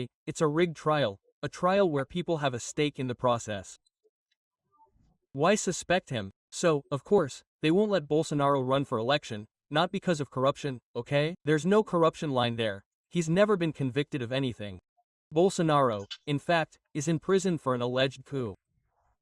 it's a rigged trial, a trial where people have a stake in the process. Why suspect him? So, of course, they won't let Bolsonaro run for election, not because of corruption, okay? There's no corruption line there. He's never been convicted of anything. Bolsonaro, in fact, is in prison for an alleged coup.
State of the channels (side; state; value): both; identical; correlation 1.00